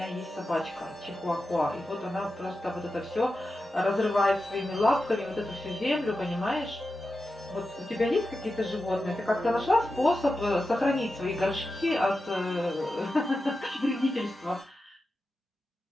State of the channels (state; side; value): normal; both; correlation 0.91